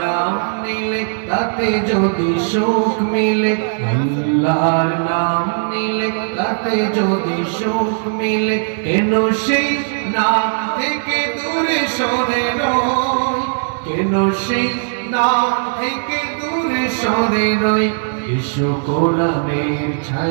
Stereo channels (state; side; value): silent; left; digital silence